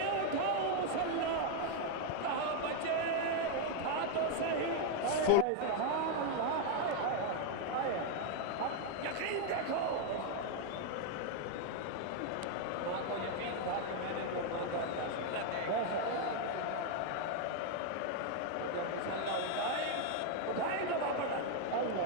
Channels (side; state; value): both; different; correlation 0.00